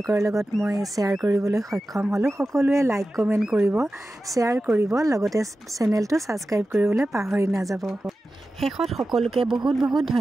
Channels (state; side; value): normal; both; correlation 0.94